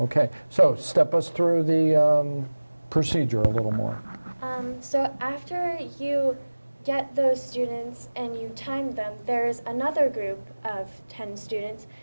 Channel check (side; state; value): both; inverted; correlation -1.00